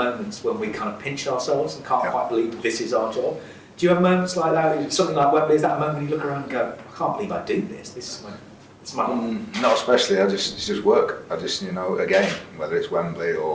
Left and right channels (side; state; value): both; identical; correlation 1.00